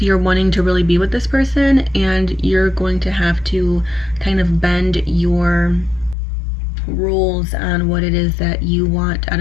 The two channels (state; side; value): drops out; right; at 6.2 s